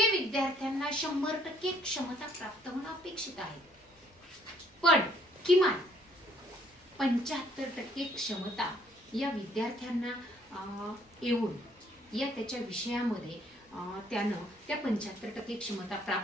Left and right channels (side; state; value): both; normal; correlation 0.64